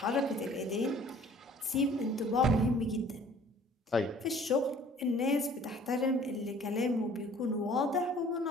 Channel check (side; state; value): both; normal; correlation 0.53